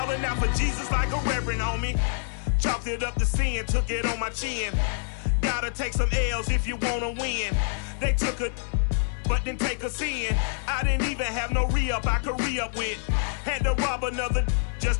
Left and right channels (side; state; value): right; silent; 61 dB below the other